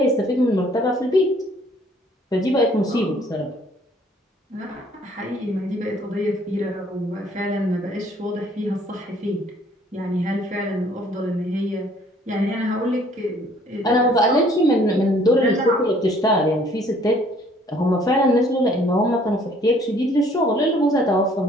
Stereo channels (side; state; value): both; normal; correlation 0.59